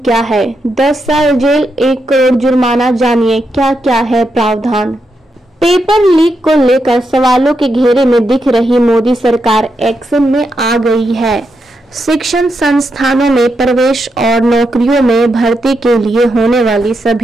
है? 10 साल जेल, 1 करोड़ जुर्माना। जानिए क्या क्या है प्रावधान। पेपर लीक को लेकर सवालों के घेरे में दिख रही मोदी सरकार एक्शन में आ गई है। शिक्षण संस्थानों में प्रवेश और नौकरियों में भर्ती के लिए होने वाली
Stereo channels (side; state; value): both; normal; correlation 0.84